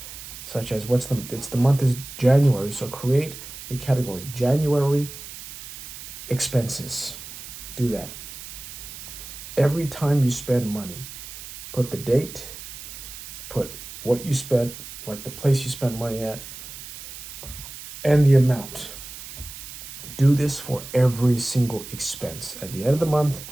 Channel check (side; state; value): right; noise; hiss, 12 dB below the sound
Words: such as the month is January, so create a category, January expenses. Do that. Every time you spend money, put the date, put what you spent, like the place you spent money at, and the amount. Do this for every single expense. At the end of the month,